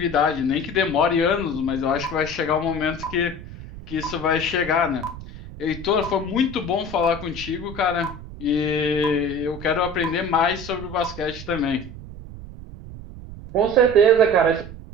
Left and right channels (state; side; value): noise; right; rumble, 13 dB below the sound